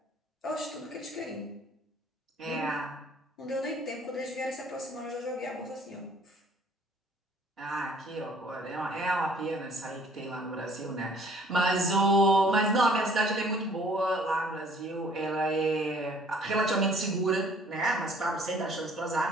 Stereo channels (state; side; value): normal; both; correlation 0.57